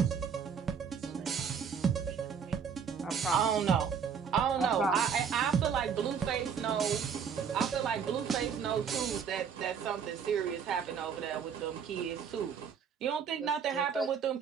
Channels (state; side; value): quieter; left; 7.0 dB